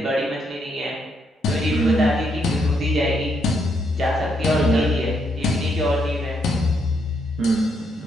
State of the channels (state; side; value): normal; both; correlation 0.76